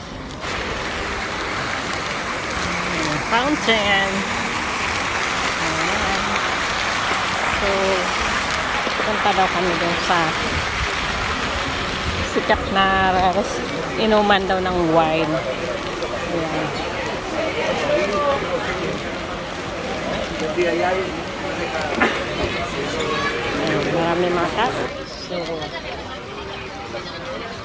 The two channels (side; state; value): both; identical; correlation 1.00